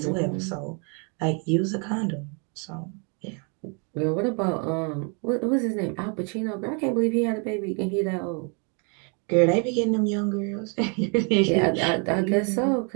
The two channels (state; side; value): quieter; left; 36.6 dB